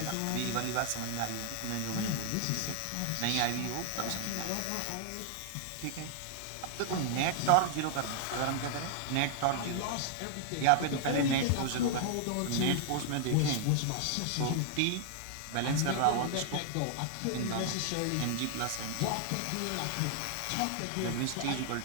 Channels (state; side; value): different; both; correlation -0.01